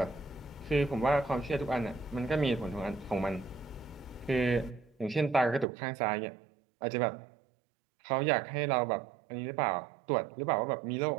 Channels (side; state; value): left; drops out; at 5.7 s